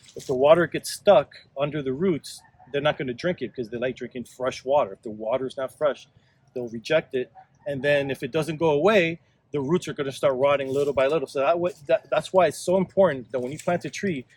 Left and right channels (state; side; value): identical; both; correlation 1.00